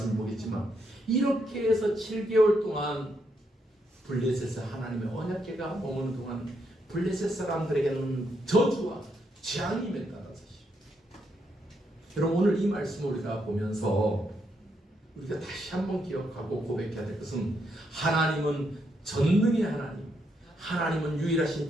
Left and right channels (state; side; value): normal; both; correlation 0.78